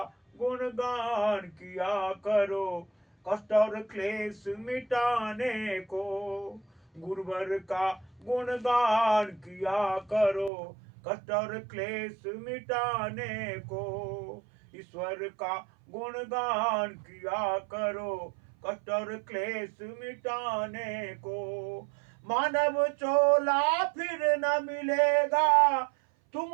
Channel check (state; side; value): drops out; left; at 10.5 s